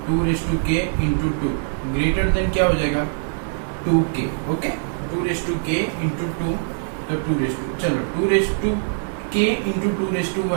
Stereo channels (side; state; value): left; silent; 64 dB below the other